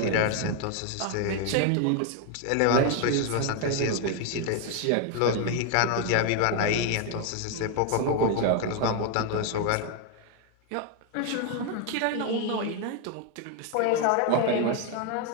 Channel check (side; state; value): both; different; correlation 0.01